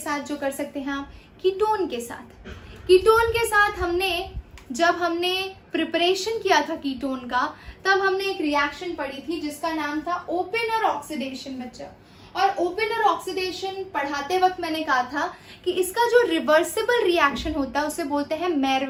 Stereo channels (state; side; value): identical; both; correlation 1.00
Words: जो कर सकते हैं आप। कीटोन के साथ, कीटोन के साथ जब हमने प्रिपरेशन किया था कीटोन का, तब हमने एक रिएक्शन पढ़ी थी जिसका नाम था ओपेनर ऑक्सीडेशन बच्चा। और ओपेनर ऑक्सीडेशन पढ़ाते वक्त मैंने कहा था कि इसका जो रिवर्सिबल रिएक्शन होता है उसे बोलते हैं